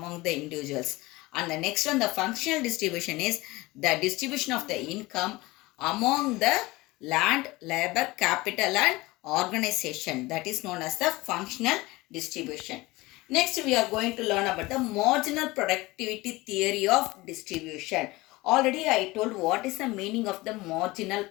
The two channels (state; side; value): quieter; right; 20.9 dB